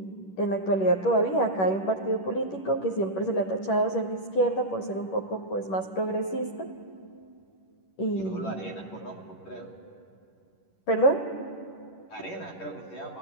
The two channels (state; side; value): late; right; 11 ms